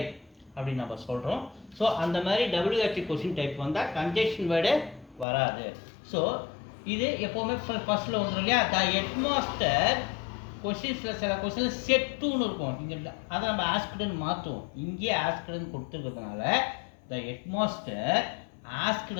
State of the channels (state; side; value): drops out; right; at 5.2 s